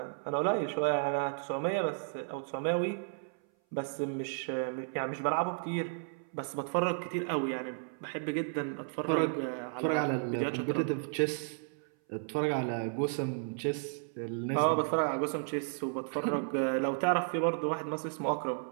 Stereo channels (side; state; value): left; silent; 56 dB below the other